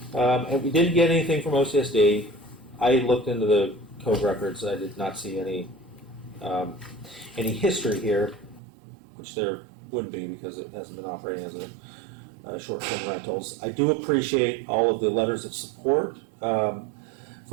we didn't get anything from OCSD, I looked into the code records. I did not see any history here, which there wouldn't be because it hasn't been operating as a short-term rentals. I do appreciate all of the letters of support from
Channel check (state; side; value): drops out; left; at 8.6 s